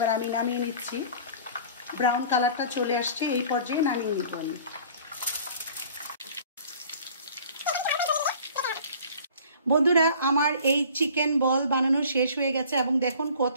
আমি নামিয়ে নিচ্ছি। ব্রাউন কালারটা চলে আসছে, এই পর্যায়ে নামিয়ে নিতে আমি। বন্ধুরা আমার এই চিকেন বল বানানো শেষ হয়ে গেছে এবং দেখুন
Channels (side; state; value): both; inverted; correlation -0.48